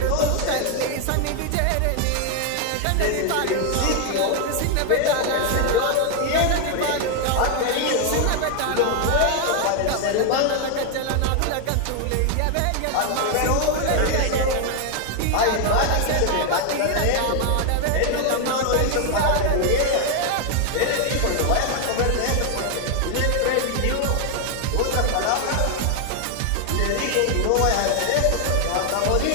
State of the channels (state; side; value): different; both; correlation 0.01